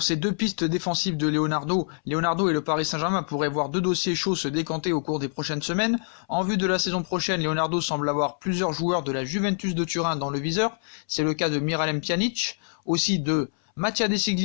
ces deux pistes défensives de Leonardo. Leonardo et le Paris Saint-Germain pourraient voir deux dossiers chauds se décanter au cours des prochaines semaines. En vue de la saison prochaine, Leonardo semble avoir plusieurs joueurs de la Juventus de Turin dans le viseur. C'est le cas de Miralem Pjanic, aussi de Mattia De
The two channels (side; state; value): right; silent; 60 dB below the other